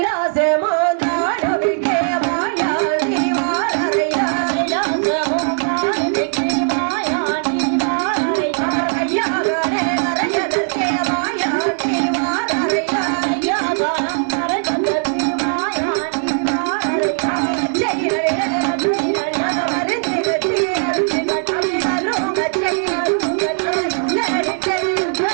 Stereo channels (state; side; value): silent; left; 58 dB below the other